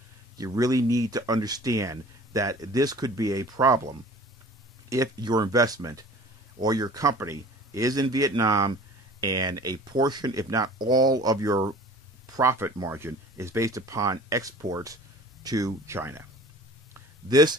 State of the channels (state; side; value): normal; both; correlation 0.45